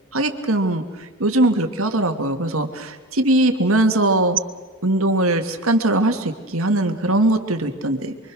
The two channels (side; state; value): both; normal; correlation 0.30